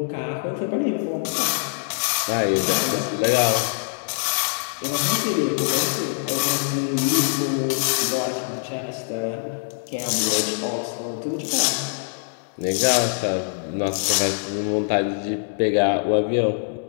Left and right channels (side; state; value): right; silent; 62 dB below the other